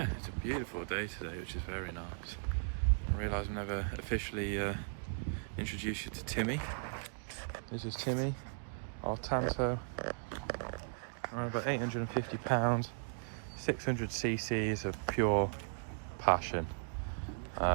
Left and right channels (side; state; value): left; silent; digital silence